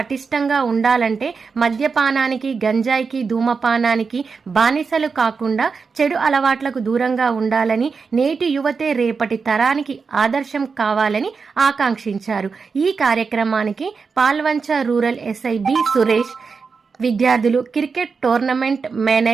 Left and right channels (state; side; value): quieter; left; 5.1 dB